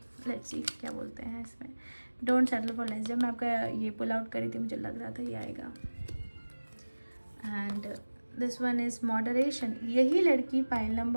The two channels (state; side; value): inverted; both; correlation -1.00